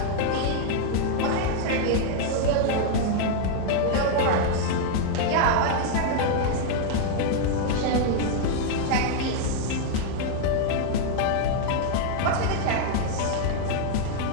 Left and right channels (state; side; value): different; both; correlation 0.00